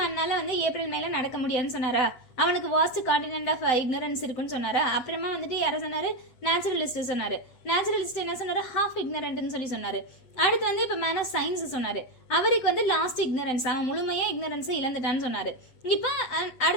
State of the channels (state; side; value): late; right; 7.8 ms